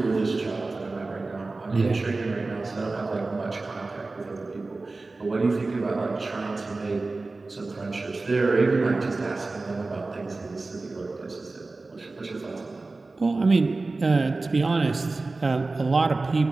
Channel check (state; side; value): quieter; left; 3.5 dB